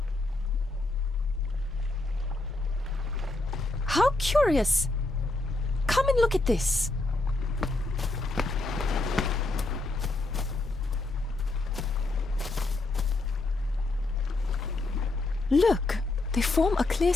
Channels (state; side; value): quieter; right; 3.0 dB